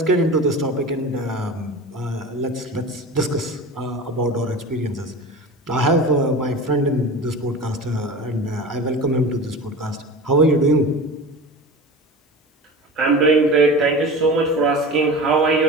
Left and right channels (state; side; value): normal; both; correlation 0.33